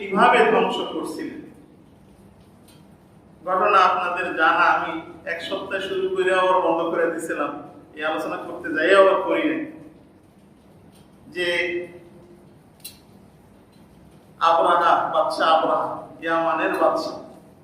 ধ্বংস করছিলেন। ঘটনা আপনাদের জানা, আমি এক সপ্তাহ শুরু করে আবার বন্ধ করে দিয়েছিলাম, এই আলোচনা করতে যাই আবার করি না। যে আবরাহা বাদশা, আবরাহা ইয়ামানের বাদশা,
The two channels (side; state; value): both; identical; correlation 1.00